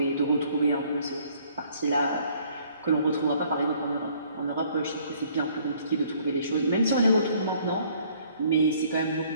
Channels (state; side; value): inverted; both; correlation -0.61